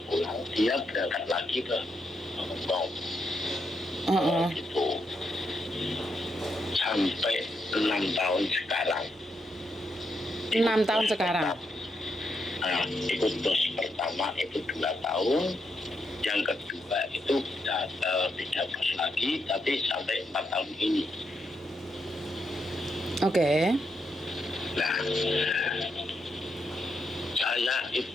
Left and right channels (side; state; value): both; normal; correlation 0.81